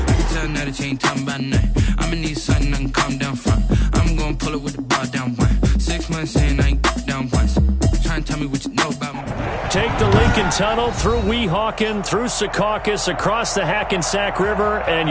tell now that you ain't talking about nothing. I'ma need something I can calm down from. I'm gonna pull it with the bar down one. 6 months in, I ain't down once. Try and tell me what you know about me. Take the Lincoln Tunnel through Weehawken, through Secaucus, across the Hackensack River, and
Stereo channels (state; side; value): identical; both; correlation 1.00